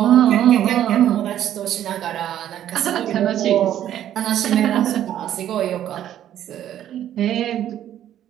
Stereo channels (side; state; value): left; quieter; 11.3 dB